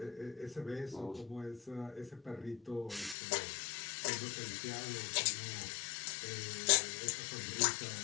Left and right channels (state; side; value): drops out; right; at 3.2 s